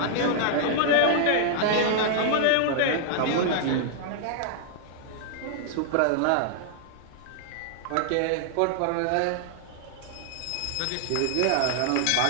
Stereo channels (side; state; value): both; different; correlation -0.01